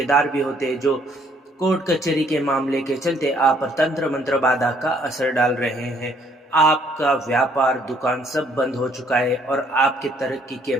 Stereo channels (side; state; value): both; normal; correlation 0.65